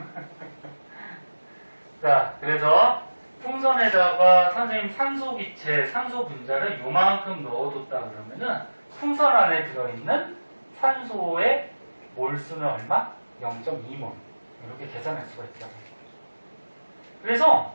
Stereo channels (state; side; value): inverted; both; correlation -1.00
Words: 자, 그래서 풍선에다가 선생님 산소기체, 산소 분자를 요만큼 넣어뒀다 그러면은 풍선 안에 들어있는 산소의 몰수는 얼마? 0.2몰. 이렇게 계산할 수가 있다. 그래서